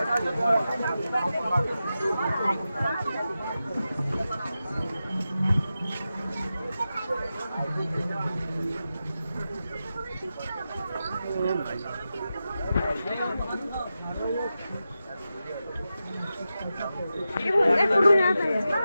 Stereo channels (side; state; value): both; inverted; correlation -0.91